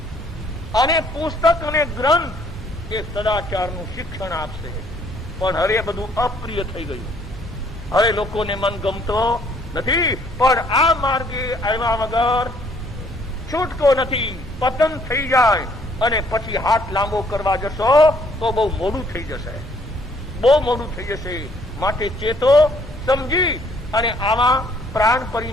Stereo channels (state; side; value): normal; both; correlation 0.63